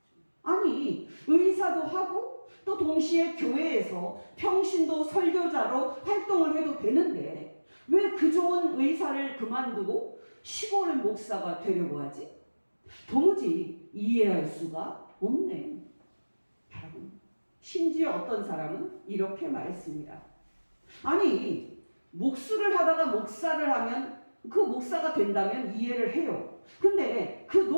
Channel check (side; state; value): both; inverted; correlation -1.00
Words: 아니, 의사도 하고 또 동시에 교회에서 평신도 설교자로 활동을 해도 되는데 왜 그 좋은 의사를 그만두고 시골 목사가 되려고 하지? 도무지 이해할 수가 없네. 여러분, 심지어 어떤 사람은 이렇게 말했습니다. 아니, 목수를 하다가 목사를 하면 그 목사가 된다면 이해를 해요. 근데 그